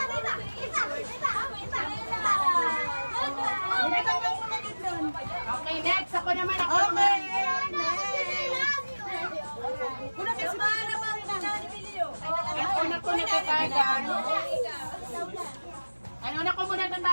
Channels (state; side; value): inverted; both; correlation -1.00